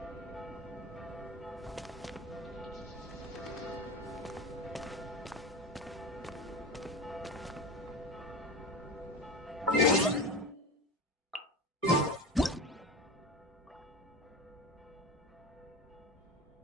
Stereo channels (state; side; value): normal; both; correlation 0.26